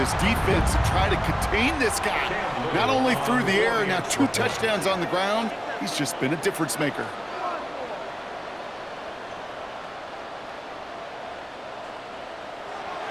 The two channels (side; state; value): both; identical; correlation 1.00